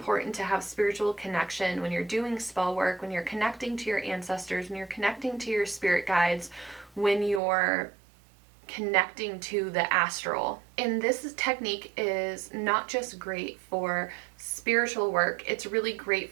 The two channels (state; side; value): drops out; left; at 7.4 s